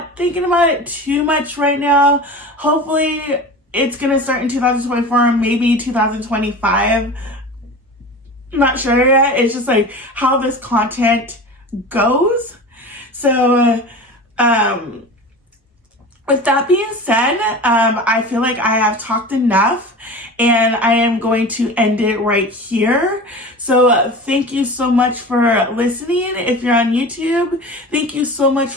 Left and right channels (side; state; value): both; normal; correlation 0.33